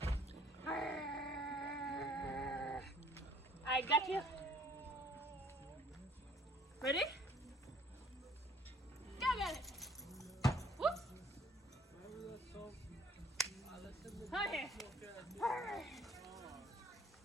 I got you. Ready? Go get it. Whoop. Come here.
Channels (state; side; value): normal; both; correlation 0.58